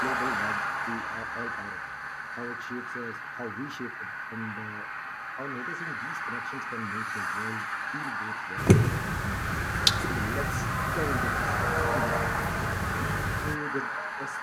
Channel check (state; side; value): identical; both; correlation 1.00